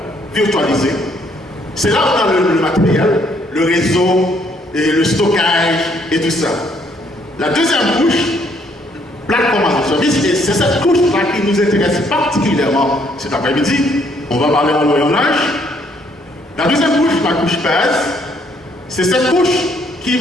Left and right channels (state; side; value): normal; both; correlation 0.67